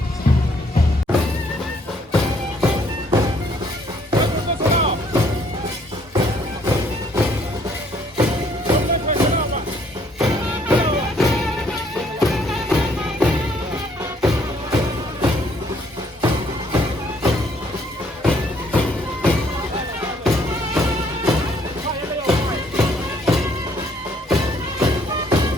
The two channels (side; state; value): both; normal; correlation 0.65